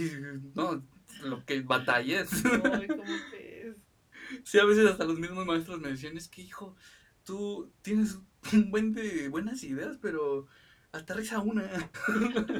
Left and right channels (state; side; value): identical; both; correlation 1.00